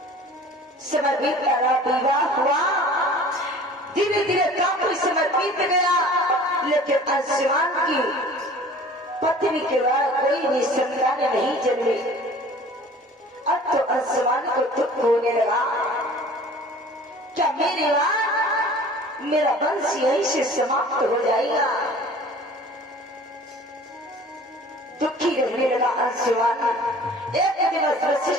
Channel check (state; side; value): normal; both; correlation 0.46